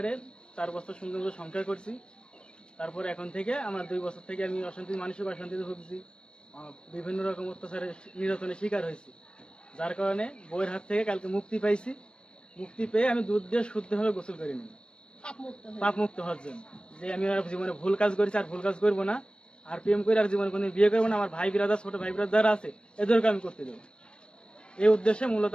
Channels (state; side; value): late; right; 0.055 ms